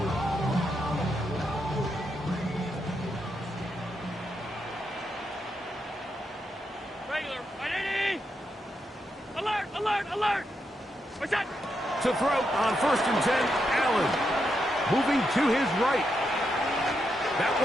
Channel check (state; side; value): normal; both; correlation 0.83